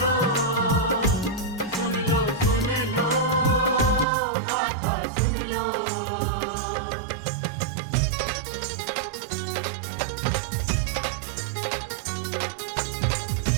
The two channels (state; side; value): drops out; left; at 4.0 s